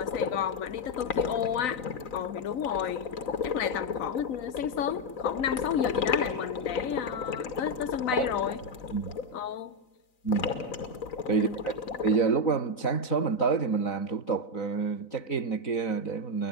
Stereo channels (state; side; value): late; right; 4.0 ms